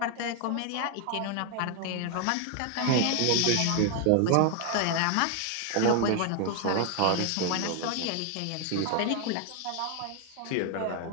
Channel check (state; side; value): different; both; correlation 0.01